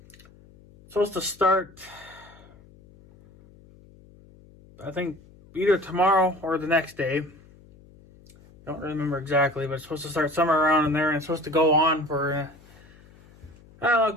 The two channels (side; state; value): left; noise; hum, 25 dB below the sound